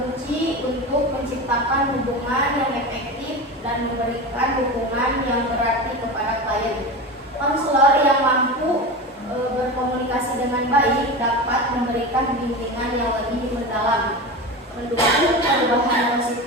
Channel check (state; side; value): normal; both; correlation 0.25